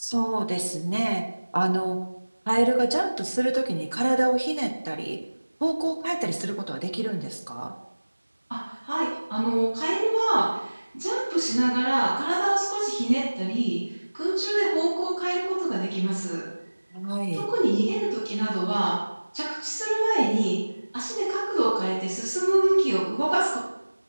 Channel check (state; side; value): inverted; both; correlation -1.00